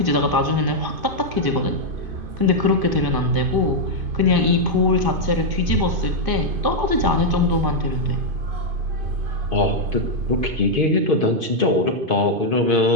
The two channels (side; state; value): left; late; 2.5 ms